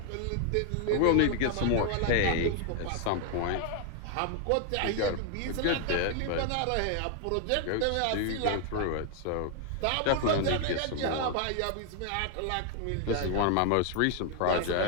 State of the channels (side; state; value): both; different; correlation 0.00